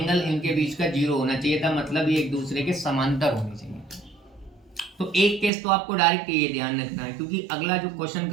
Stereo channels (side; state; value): left; drops out; at 5.5 s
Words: इनके बीच का 0 होना चाहिए था, मतलब ये एक दूसरे के समांतर होने चाहिए। तो एक केस तो आपको डायरेक्ट ये ध्यान रखना है, क्योंकि अगला जो क्वेश्चन